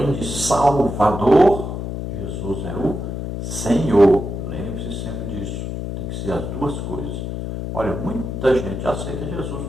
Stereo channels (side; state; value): left; noise; hum, 5 dB below the sound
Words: de Salvador, Jesus é o Senhor. Lembre-se sempre disso. Tem que ser as duas coisas. Olha, muita gente aceita Jesus